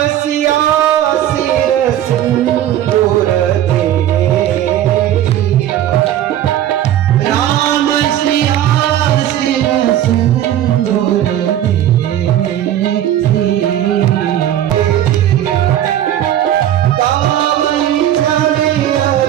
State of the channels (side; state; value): left; quieter; 11.8 dB